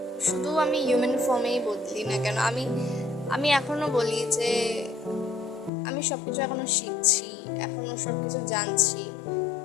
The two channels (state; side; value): drops out; right; at 5.7 s